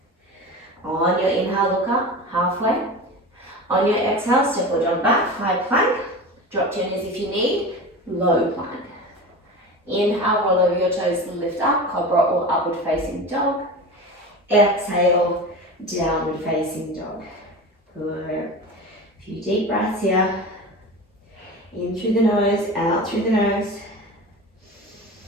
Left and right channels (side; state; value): both; normal; correlation 0.30